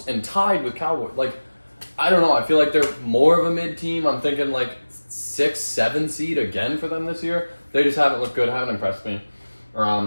and tied with Cowboys. Like, I don't know. I feel like they're more of a mid-team. I'm thinking, like, 6, 7 seed again for them this year. They just haven't looked good, haven't impressed me.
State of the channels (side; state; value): both; inverted; correlation -1.00